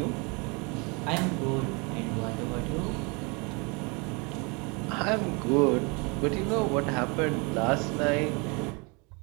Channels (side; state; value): left; quieter; 30.3 dB